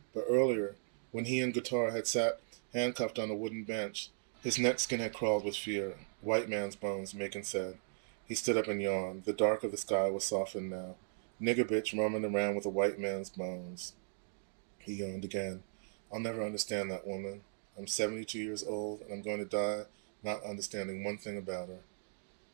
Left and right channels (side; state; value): left; silent; digital silence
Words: But earlier, when he and Guitar had sat handcuffed on a wooden bench, his neck skin had crawled with fear. White man's bones, Macon said. He stood up and yawned. The dark of the sky was softened now. Nigger bitch roaming around with a white man's bones. He yawned again. I'll never understand that woman. I'm 72 years old, and I'm going to die not understanding one thing about her.